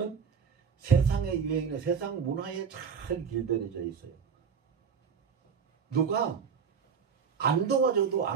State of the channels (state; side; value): quieter; left; 6.6 dB